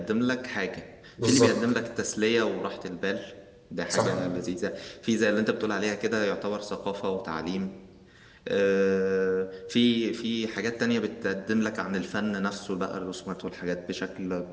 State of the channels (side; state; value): both; identical; correlation 1.00